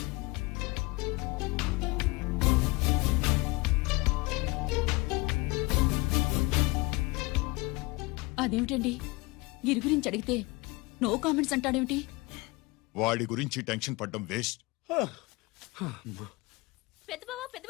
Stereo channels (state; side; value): quieter; right; 24.3 dB